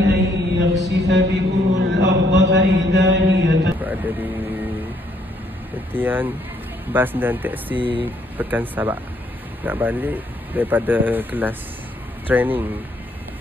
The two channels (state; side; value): normal; both; correlation 0.69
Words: يخسف بكم الأرض فإذا هي Ada di tentian bas dan teksi Pekan Sabak. Nak balik daripada kelas training